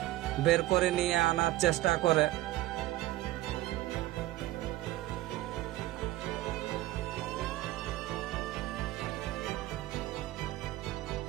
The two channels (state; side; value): quieter; left; 16.6 dB